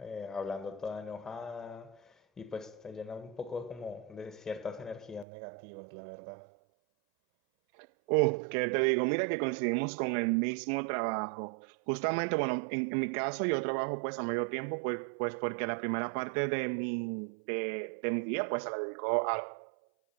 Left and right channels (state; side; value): drops out; left; at 5.2 s